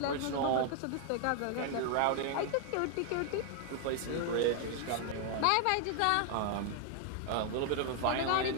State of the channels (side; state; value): both; different; correlation 0.00